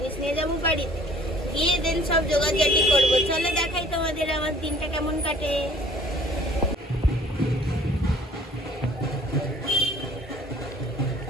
নিয়ে যাবো বাড়িতে, গিয়ে দেন সব জোগাড়জাটি করবো। চলো দেখাই তোমাদের আমার দিনটা কেমন কাটে।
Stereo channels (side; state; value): both; normal; correlation 0.53